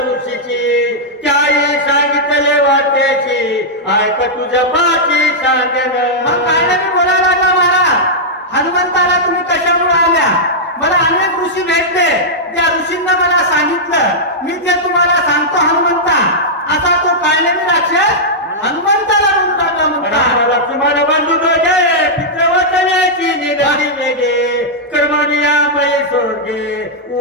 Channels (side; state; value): both; normal; correlation -0.08